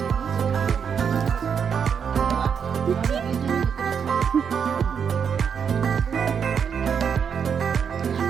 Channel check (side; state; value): left; quieter; 7.1 dB